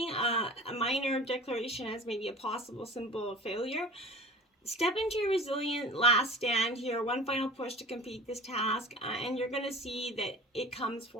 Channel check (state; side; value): normal; both; correlation 0.40